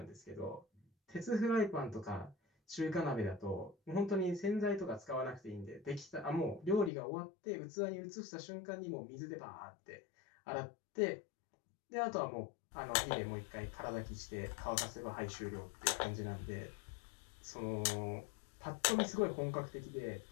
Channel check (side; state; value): right; drops out; at 6.9 s